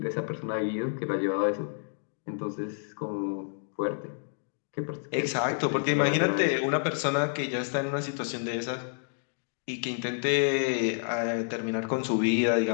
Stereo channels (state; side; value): silent; right; digital silence